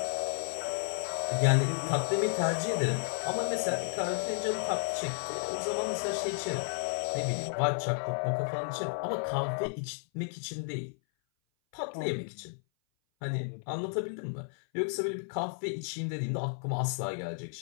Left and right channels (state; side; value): silent; right; 56 dB below the other